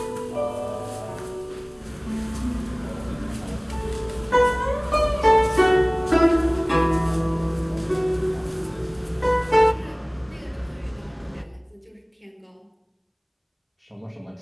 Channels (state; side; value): identical; both; correlation 1.00